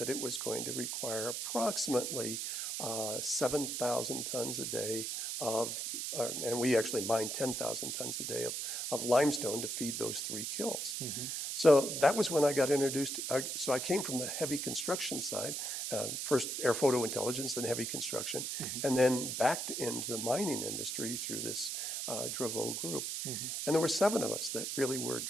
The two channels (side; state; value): right; noise; hiss, 3 dB below the sound